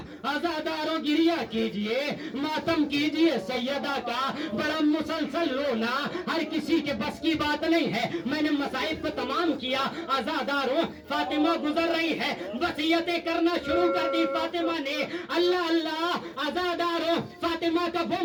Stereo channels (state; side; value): identical; both; correlation 1.00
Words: عزاداروں گریہ کیجئے ماتم کیجئے سیدہ کا بڑا مسلسل رونا ہر کسی کے بس کی بات نہیں ہے میں نے مصائب کو تمام کیا عزاداروں فاطمہ گزر رہی ہے وصیتیں کرنا شروع کر دی فاطمہ نے اللہ اللہ عزاداروں فاطمہ کا وہ